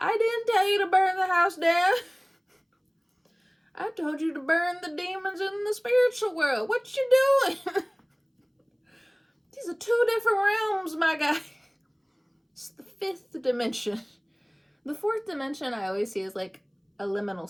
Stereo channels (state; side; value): identical; both; correlation 1.00